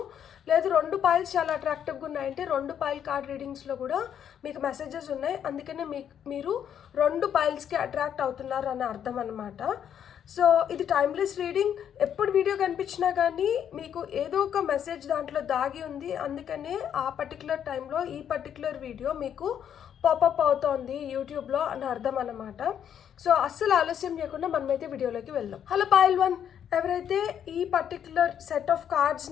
లేదు 2 పాయిల్స్ చాలా అట్రాక్టివ్గా ఉన్నాయంటే 2 పాయిల్ కార్డ్ రీడింగ్స్లో కూడా మీకు మెసేజెస్ ఉన్నాయి. అందుకనే మీరు 2 పాయిల్స్కి అట్రాక్ట్ అవుతున్నారు అని అర్థం అన్నమాట. సో ఇది టైమ్లెస్ రీడింగ్. ఎప్పుడు వీడియో కనిపించినా కానీ మీకు ఏదో ఒక మెసేజ్ దాంట్లో దాగి ఉంది. అందుకనే ఆ పర్టికులర్ టైంలో ఈ పర్టికులర్ వీడియో మీకు పాపప్ అవుతోంది యూట్యూబ్లో అని అర్థం అన్నమాట. సో అస్సలు ఆలస్యం చేయకుండా మనమైతే వీడియోలోకి వెళ్దాం. హలో పాయిల్ 1, ఎవరైతే ఈ పర్టికులర్ సెట్ ఆఫ్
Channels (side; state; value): right; quieter; 9.0 dB